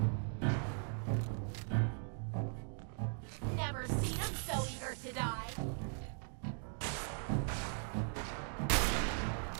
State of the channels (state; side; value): silent; left; 52 dB below the other